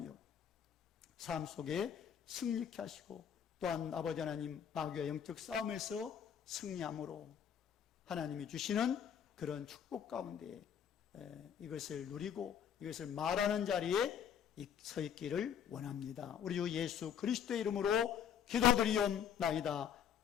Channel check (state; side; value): quieter; right; 8.6 dB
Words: 삶 속에 승리케 하시고, 또한 아버지 하나님 마귀와 영적 싸움에서 승리함으로 하나님이 주시는 그런 축복 가운데 이것을 누리고 이것을 말하는 자리에 서 있기를 원합니다. 우리 주 예수 그리스도의 이름으로 기도드리옵나이다.